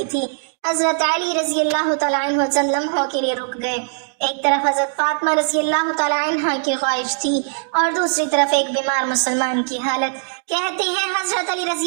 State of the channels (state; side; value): silent; left; digital silence